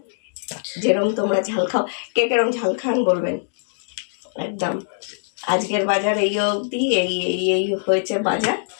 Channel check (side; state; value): right; silent; digital silence